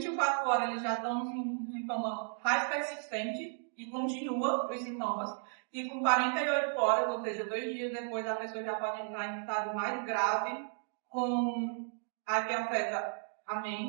horas eles já estão com um sintoma mais persistente e continua os sintomas. E com 48 horas, ou seja, 2 dias depois, a pessoa já pode entrar em estado mais grave, com a que afeta a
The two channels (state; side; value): silent; left; 55 dB below the other